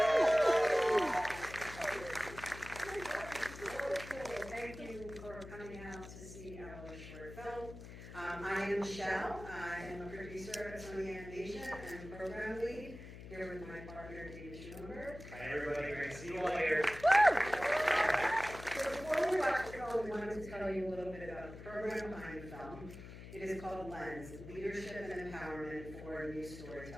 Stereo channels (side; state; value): left; noise; hum, 13 dB below the sound